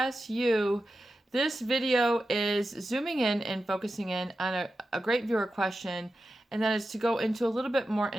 you. This video is zooming in and focusing in on a great viewer question, and that is to go into a little bit more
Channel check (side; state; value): both; normal; correlation 0.92